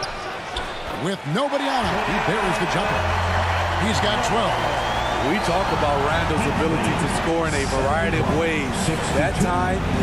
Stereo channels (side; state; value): both; identical; correlation 1.00